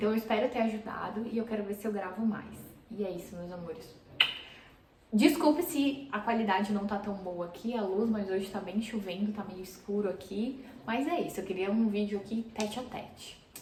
eu espero ter ajudado e eu quero ver se eu gravo mais. E é isso, meus amores. Desculpe se a qualidade não tá tão boa aqui, a luz, mas hoje tá bem chovendo, tá meio escuro aqui. Mas é isso, eu queria um vídeo aqui tete a tete.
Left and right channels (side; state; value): both; identical; correlation 1.00